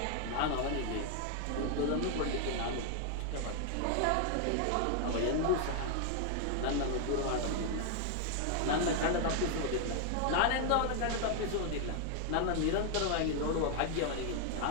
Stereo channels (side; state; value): both; different; correlation 0.00